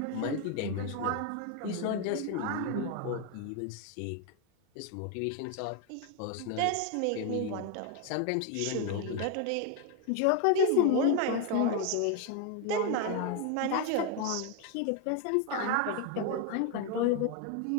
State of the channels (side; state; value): both; different; correlation 0.01